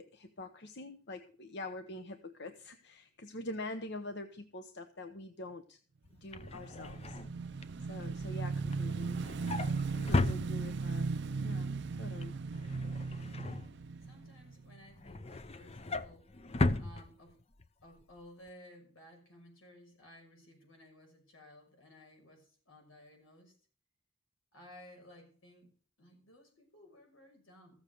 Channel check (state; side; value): normal; both; correlation 0.65